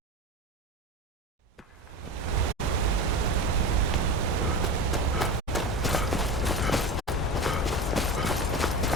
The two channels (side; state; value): both; normal; correlation 0.26